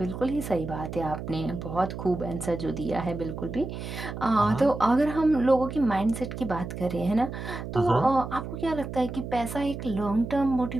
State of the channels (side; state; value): right; noise; hum, 8 dB below the sound